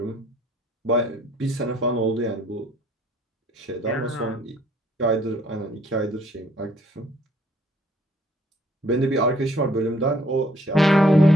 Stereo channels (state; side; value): normal; both; correlation 0.62